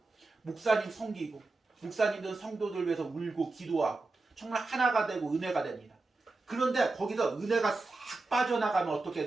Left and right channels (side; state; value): left; quieter; 3.4 dB